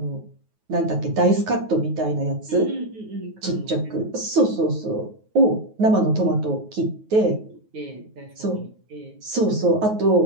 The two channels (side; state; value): left; late; 9.3 ms